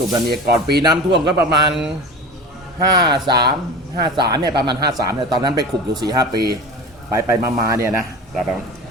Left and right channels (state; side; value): normal; both; correlation 0.34